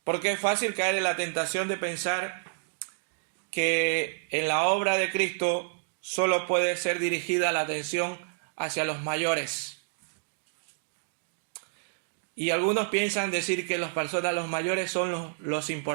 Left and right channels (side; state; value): left; silent; digital silence